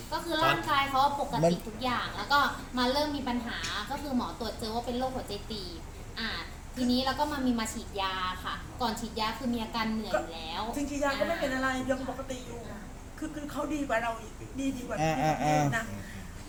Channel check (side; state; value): both; identical; correlation 1.00